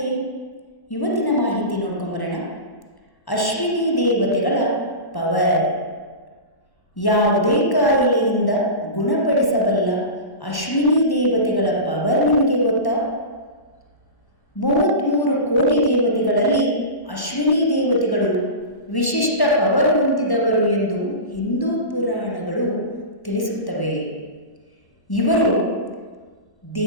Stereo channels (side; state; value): right; late; 1.1 ms